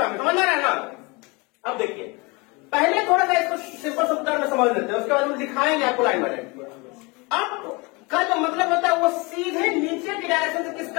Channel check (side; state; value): right; quieter; 27.1 dB